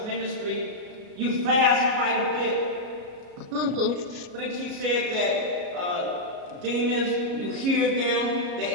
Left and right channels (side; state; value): left; late; 34 ms